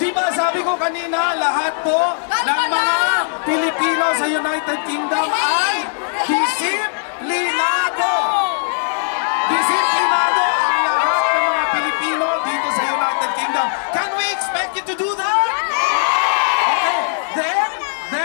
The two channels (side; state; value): right; silent; digital silence